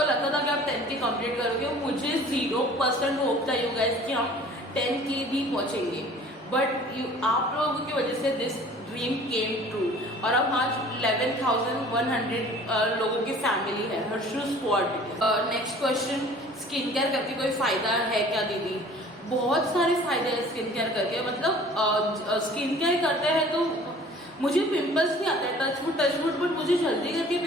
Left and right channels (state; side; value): normal; both; correlation 0.48